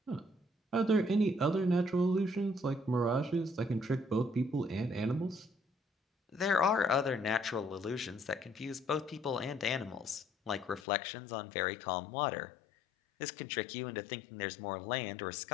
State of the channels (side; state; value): right; drops out; at 10.9 s